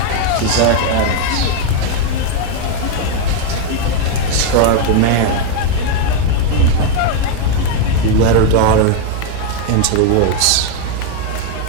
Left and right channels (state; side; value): different; both; correlation 0.01